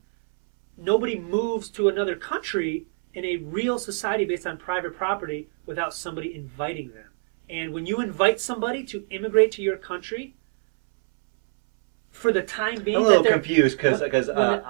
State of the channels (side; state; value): left; silent; 62 dB below the other